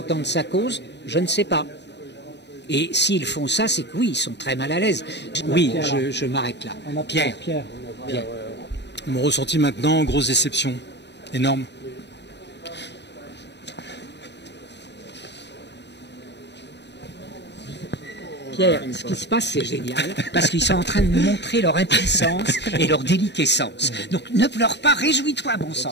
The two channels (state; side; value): late; right; 0.50 ms